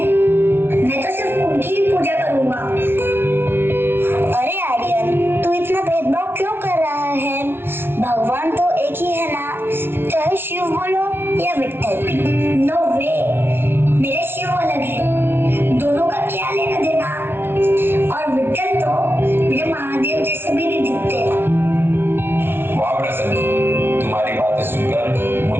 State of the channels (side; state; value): left; late; 0.11 ms